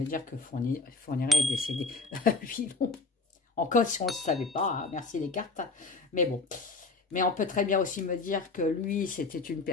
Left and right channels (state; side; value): quieter; right; 3.9 dB